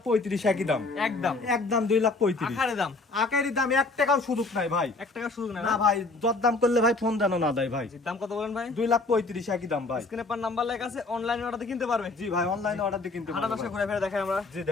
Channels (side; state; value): right; quieter; 3.5 dB